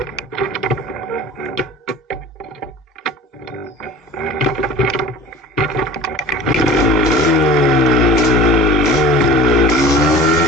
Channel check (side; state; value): both; normal; correlation 0.40